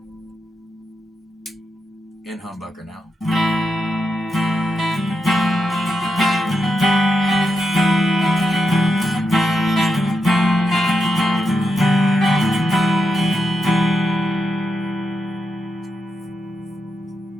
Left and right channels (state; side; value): normal; both; correlation 0.85